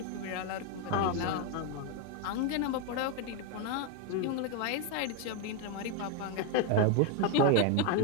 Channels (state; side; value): different; both; correlation 0.01